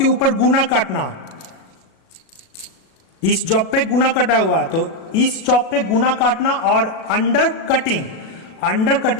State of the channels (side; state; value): right; late; 37 ms